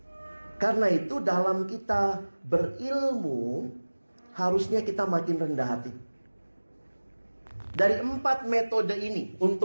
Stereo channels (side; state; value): both; inverted; correlation -1.00